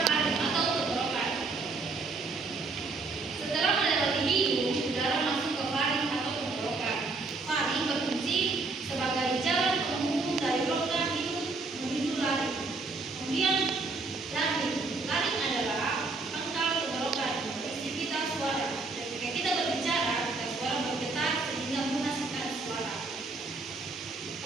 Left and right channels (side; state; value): left; quieter; 3.8 dB